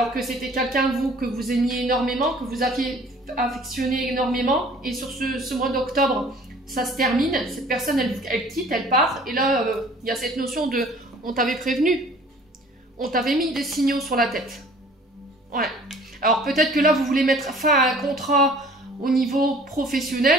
que c'était quelqu'un, vous, que vous aimiez énormément, que vous aviez affectionné énormément, et sur ce mois d'octobre, ça se termine, cette personne, elle quitte, elle part, et là, il y a cette notion de « on t'avait prévenu, on t'avait mis des signaux sur la tête ». Ouais. Alors peut-être que là, vous voulez mettre fin à un contrat au niveau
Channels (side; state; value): both; normal; correlation 0.51